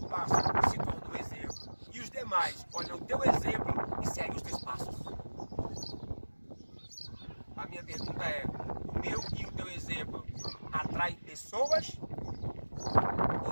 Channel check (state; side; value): inverted; both; correlation -1.00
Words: passo e se torna um exemplo. E os demais olham o teu exemplo e seguem os teus passos. A minha pergunta é, o meu e o teu exemplo atrai pessoas